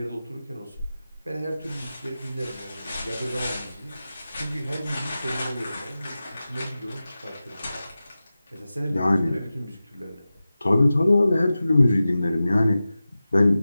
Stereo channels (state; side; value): inverted; both; correlation -0.95